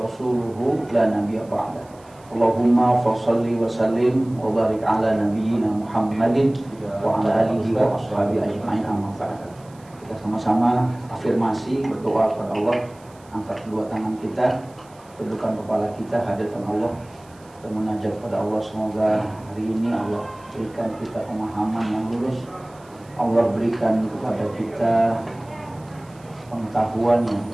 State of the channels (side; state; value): right; noise; hiss, 28 dB below the sound